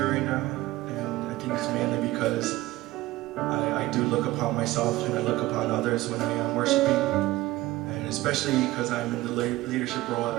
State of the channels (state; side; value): quieter; left; 17.8 dB